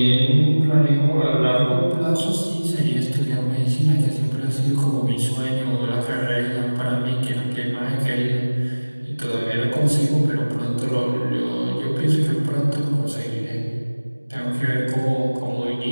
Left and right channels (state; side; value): inverted; both; correlation -1.00